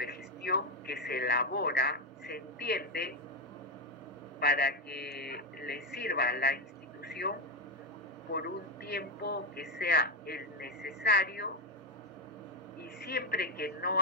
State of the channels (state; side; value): normal; both; correlation 0.07